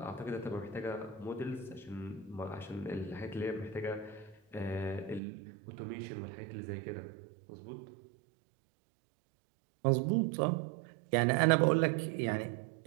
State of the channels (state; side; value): drops out; left; at 5.2 s